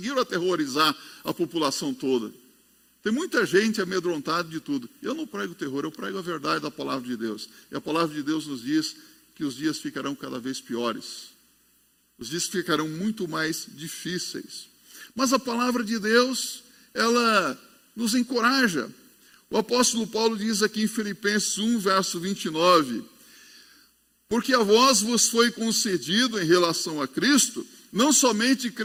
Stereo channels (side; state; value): both; identical; correlation 1.00